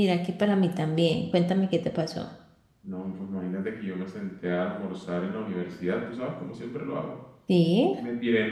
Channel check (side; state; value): both; identical; correlation 1.00